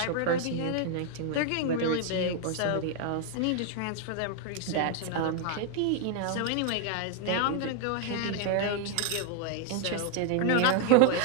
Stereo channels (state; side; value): different; both; correlation 0.00